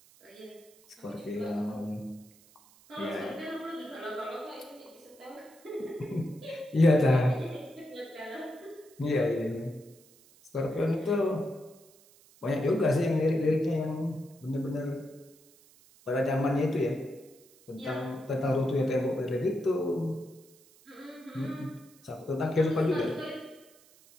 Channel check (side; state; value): right; noise; hiss, 27 dB below the sound